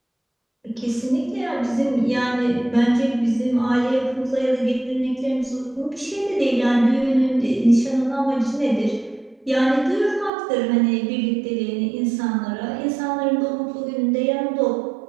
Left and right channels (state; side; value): drops out; left; at 10.3 s